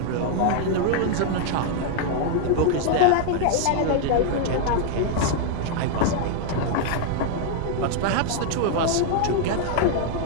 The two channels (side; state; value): both; different; correlation 0.00